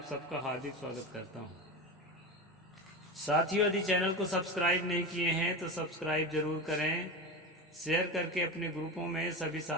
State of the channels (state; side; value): normal; both; correlation 0.22